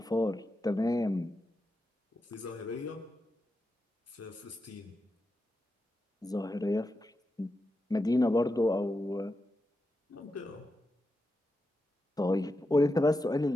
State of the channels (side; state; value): both; normal; correlation 0.89